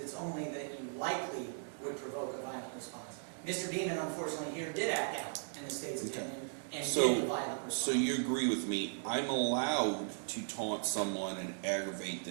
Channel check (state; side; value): silent; left; digital silence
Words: only that you likely would provoke a violent response. Mr. Beeman, unfortunately, here did act out in the state's opinion and did a violent response. So you agree with me, I'm allowed to taunt someone and aggravate